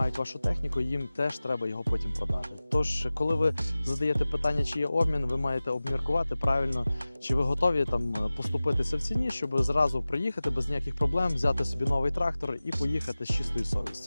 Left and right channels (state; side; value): inverted; both; correlation -0.97